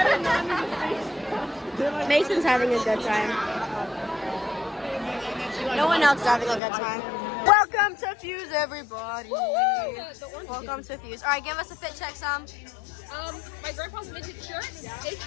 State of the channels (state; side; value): drops out; right; at 6.6 s